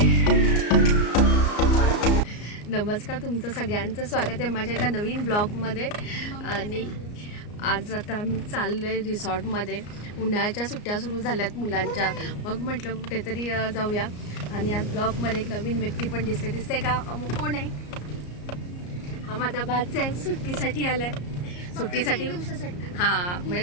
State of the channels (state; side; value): late; right; 34 ms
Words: नमस्कार, तुमचं सगळ्यांचं स्वागत आहे माझ्या एका नवीन ब्लॉगमध्ये. आणि आज आता आम्ही चाललोय रिसॉर्टमध्ये. उन्हाळ्याच्या सुट्ट्या सुरू झाल्यात मुलांच्या, मग म्हटलं कुठेतरी जाऊया. आणि आज ब्लॉगमध्ये एक नवीन व्यक्ती पण दिसते का? अमुक कोण आहे? हा माझा भाचा आहे, सुट्टीसाठी आलाय. सुट्टीसाठी हां,